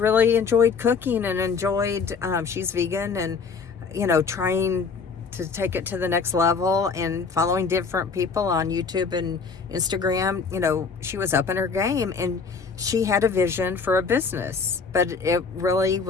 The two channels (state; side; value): quieter; right; 5.2 dB